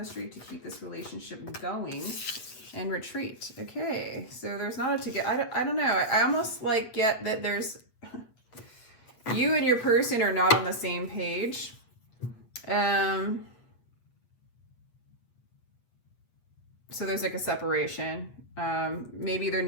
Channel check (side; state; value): right; late; 8.4 ms